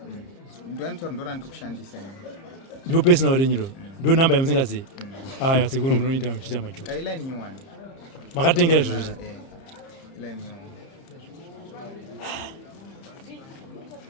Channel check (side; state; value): right; late; 30 ms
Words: ndoanotaura ndo randiri kushandisa ndo personal renyu ro ndo nhamba yamusingazivi aya sekuru munoita muchiita majoka iline nyuwani makatengera zvozvo iline nyuwani